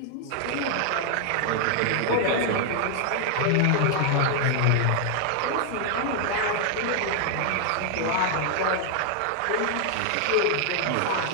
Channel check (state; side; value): different; both; correlation 0.00